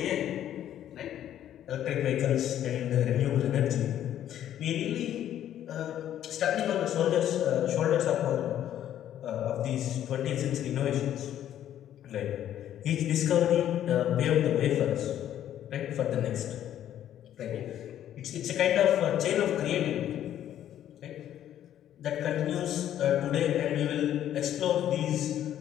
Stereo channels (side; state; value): right; quieter; 11.2 dB